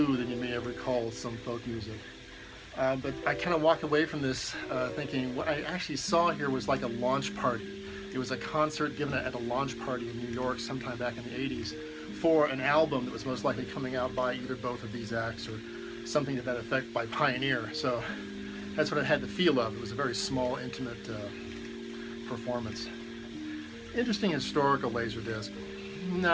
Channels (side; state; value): both; identical; correlation 1.00